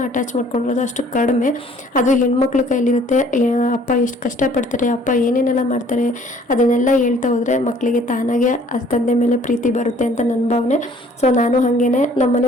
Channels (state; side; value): normal; both; correlation 0.57